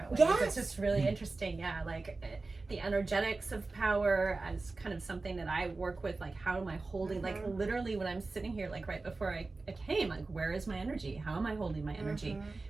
ways. Yes. It's just really interesting. Yeah, like the energetics of power as kind of something that I work with. Like, how am I holding, like literally when I'm sitting here, like right before I came, like, where is my energy? How am I holding my energy?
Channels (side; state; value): left; quieter; 3.6 dB